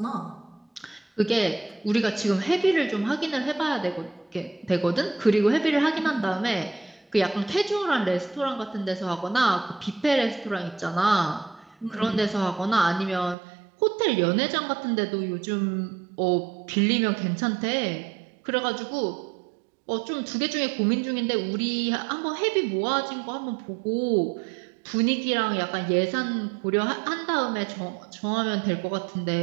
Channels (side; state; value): left; drops out; at 13.4 s